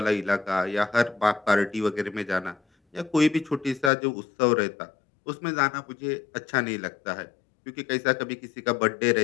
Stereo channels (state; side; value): drops out; right; at 3.9 s